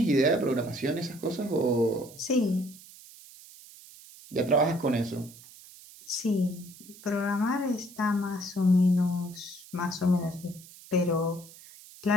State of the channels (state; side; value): noise; right; hiss, 20 dB below the sound